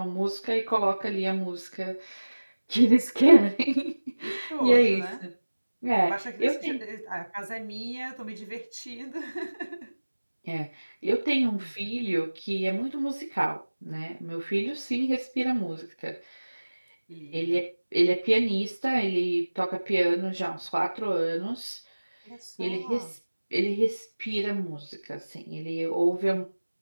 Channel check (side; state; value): both; inverted; correlation -1.00